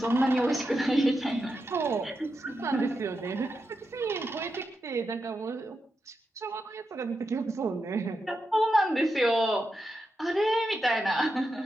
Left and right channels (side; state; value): both; normal; correlation 0.87